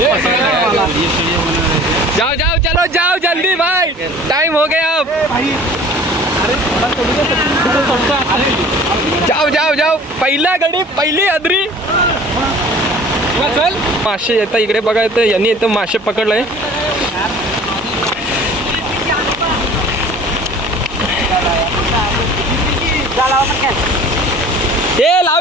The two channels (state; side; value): normal; both; correlation 0.46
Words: जाओ जाओ चलो जाओ जल्दी भाई, टाइम हो गया अब. जाओ जाओ जाओ, पहिला गडी पहिली अदरी. चल मासे येतं इकडे बघा, येतं यांनी इथं मासे पकडलंय. हे